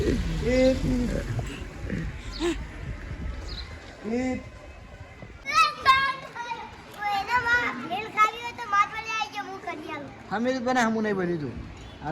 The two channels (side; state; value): both; identical; correlation 1.00